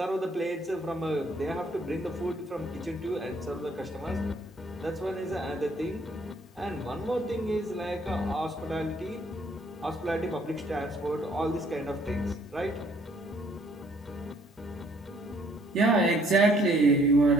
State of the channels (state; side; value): normal; both; correlation 0.63